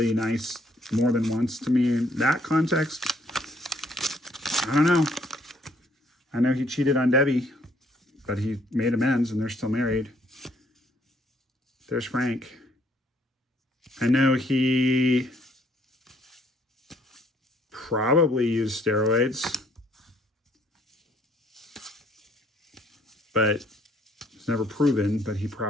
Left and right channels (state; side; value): normal; both; correlation 0.65